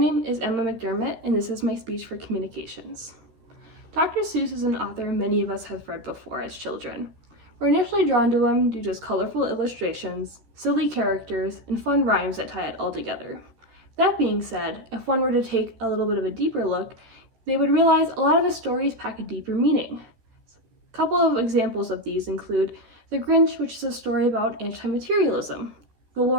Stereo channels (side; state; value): left; late; 13 ms